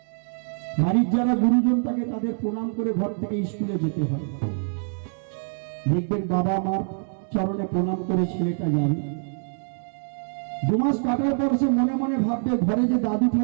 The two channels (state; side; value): silent; left; 62 dB below the other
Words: বাড়ির যারা গুরুজন থাকে তাদের প্রণাম করে ঘর থেকে স্কুলে যেতে হয়। দেখবেন বাবা মার চরণে প্রণাম করে ছেলেটা যাবে। 2 মাস কাটার পর সে মনে মনে ভাববে, ঘরে যে দাদু